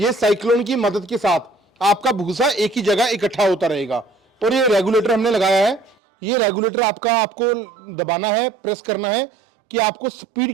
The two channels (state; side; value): drops out; left; at 6.0 s